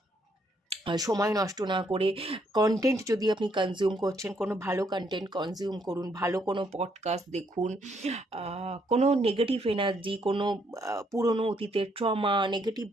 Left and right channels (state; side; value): normal; both; correlation 0.72